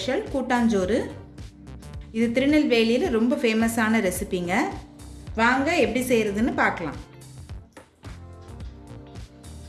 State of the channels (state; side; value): identical; both; correlation 1.00